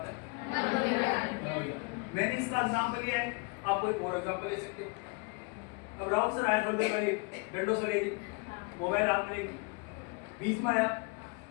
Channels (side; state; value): right; quieter; 31.4 dB